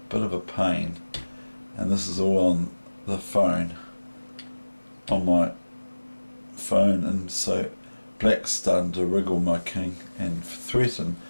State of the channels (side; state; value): both; inverted; correlation -1.00